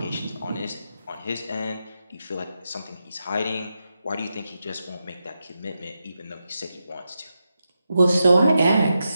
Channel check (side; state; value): both; inverted; correlation -0.88